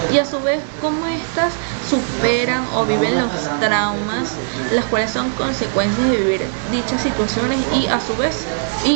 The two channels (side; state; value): left; silent; digital silence